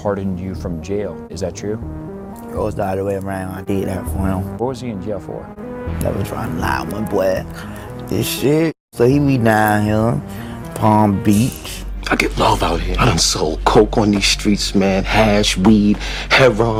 you from jail. Is that true? It was the other way around. I did that for him. What was he in jail for? That was trying to lie on my boy. This shit. So he be down here, Palm Beach. I get love out here. I done sold coke on these streets, man. Hash, weed,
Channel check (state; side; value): identical; both; correlation 1.00